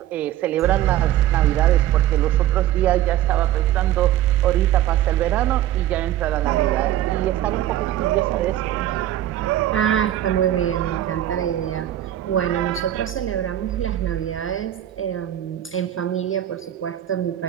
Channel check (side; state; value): left; quieter; 12.7 dB